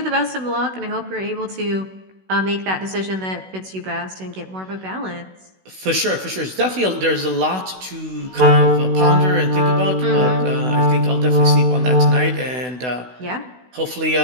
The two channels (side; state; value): left; late; 16 ms